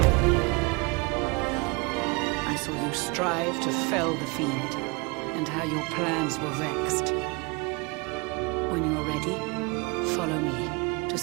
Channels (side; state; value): left; quieter; 28.2 dB